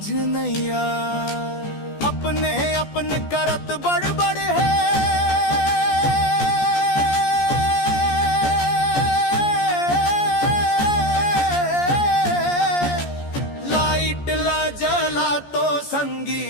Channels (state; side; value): late; right; 14 ms